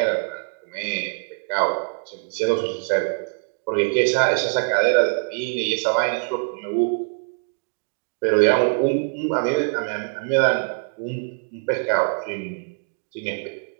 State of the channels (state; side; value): silent; left; digital silence